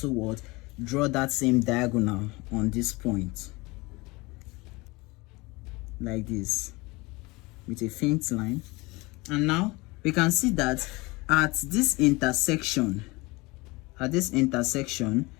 draw that same diagonal on this point like this with a faint line. And now we can see that at this intersection,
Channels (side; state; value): right; quieter; 24.0 dB